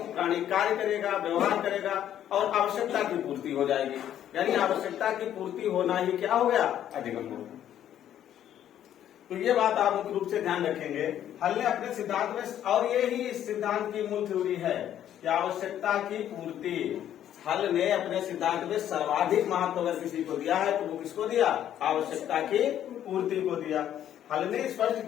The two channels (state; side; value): quieter; right; 10.9 dB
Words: कार्य करेगा, व्यवहार करेगा, और आवश्यकता की पूर्ति हो जाएगी। यानी आवश्यकता की पूर्ति होना ही क्या हो गया, अधिगम हो गया। तो ये बात आप मुख्य रूप से ध्यान रखेंगे। हल ने अपने सिद्धांत में, और ये ही इस सिद्धांत की मूल थ्योरी है कि आवश्यकता की पूर्ति, हल ने अपने सिद्धांत में सर्वाधिक महत्व अगर किसी को दिया है तो वो किसको दिया, आवश्यकता की पूर्ति को दिया। हल ने स्पष्ट